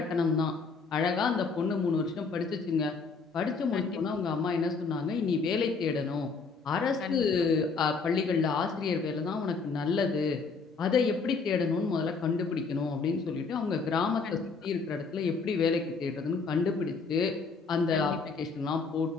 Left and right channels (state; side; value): quieter; right; 4.7 dB